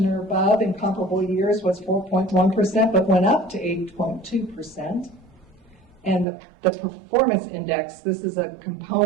or above in comparable years, was 4.1%, but went up to 8.2%. And the performance index, this is a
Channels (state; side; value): drops out; left; at 6.2 s